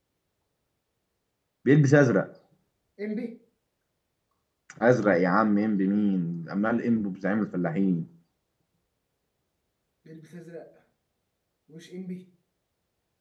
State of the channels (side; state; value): both; identical; correlation 1.00